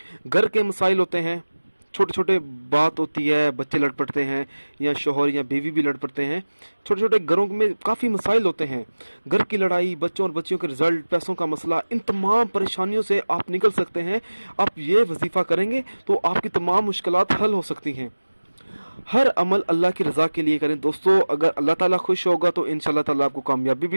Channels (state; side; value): inverted; both; correlation -1.00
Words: घर के मसाइल होते हैं, छोटे छोटे बात होती है, बच्चे लड़ पड़ते हैं या शोहर या बीवी भी लड़ पड़ते हैं। छोटे छोटे घरों में काफ़ी मसाइल होते हैं, घर की लड़ाई, बच्चों और बच्चियों के रिजल्ट, पैसों का मसला, इन तमाम परेशानियों से आप निकल सकते हैं। आप ये वजीफ़ा करेंगे तो आपकी तमाम मुश्किलात हल हो सकती हैं। हर अमल अल्लाह की रज़ा के लिए करें दोस्तों। अगर अल्लाह ताला खुश होगा तो इंशाअल्लाह ताला आपको कामयाबी